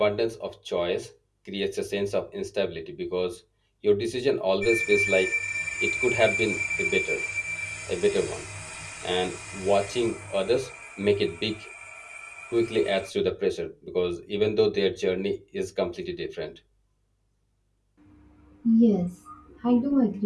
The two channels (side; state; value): both; identical; correlation 1.00